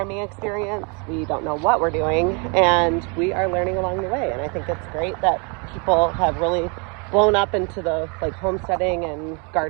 experience. We don't know what we're doing, and we are learning along the way. And I think it's great that people have really blown up into the homesteading and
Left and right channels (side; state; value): left; quieter; 34.0 dB